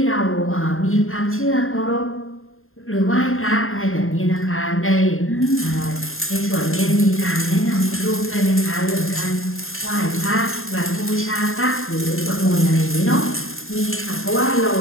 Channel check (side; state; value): right; late; 0.61 ms